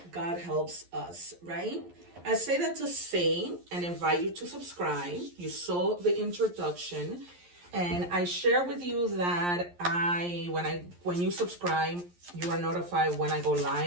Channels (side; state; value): left; late; 11 ms